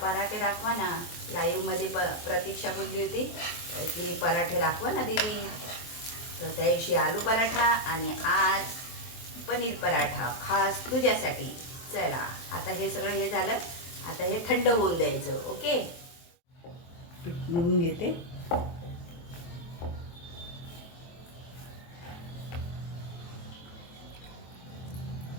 पराठे दाखवा ना. लाईव्हमध्ये प्रतीक्षा बोलली होती की पराठे दाखवा ना दीदी. तर त्या दिवशी आलू पराठा आणि आज पनीर पराठा खास तुझ्यासाठी. चला आता हे सगळं हे झालं. आता हे थंड होऊन द्यायचं. ओके, पीठ मळून घेते.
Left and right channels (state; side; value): late; right; 23 ms